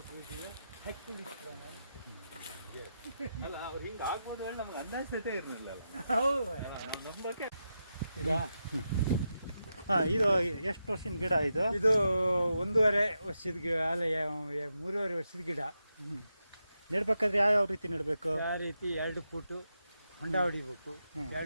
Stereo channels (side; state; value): both; inverted; correlation -0.87